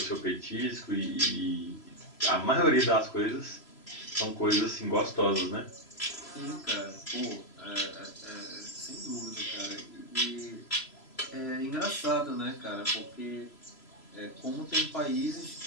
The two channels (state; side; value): late; right; 3.0 ms